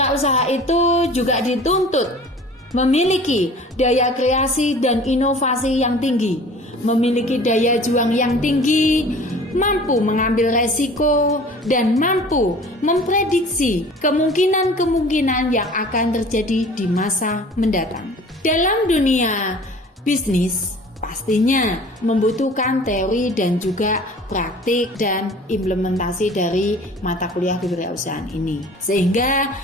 itu juga dituntut memiliki daya kreasi dan inovasi yang tinggi, memiliki daya juang yang tinggi, mampu mengambil resiko, dan mampu memprediksi kemungkinan-kemungkinan yang akan terjadi di masa mendatang. Dalam dunia bisnis, pastinya membutuhkan teori dan juga praktik dan implementasi dari mata kuliah kewirausahaan ini. Sehingga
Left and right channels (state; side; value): normal; both; correlation 0.45